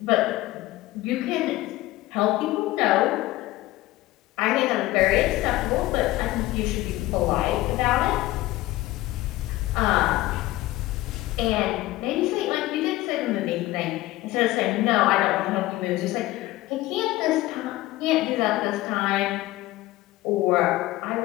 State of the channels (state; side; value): quieter; right; 17.5 dB